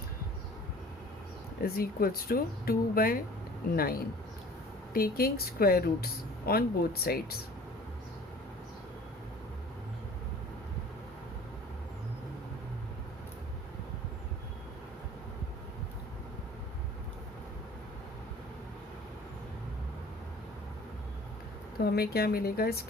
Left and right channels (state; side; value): normal; both; correlation 0.47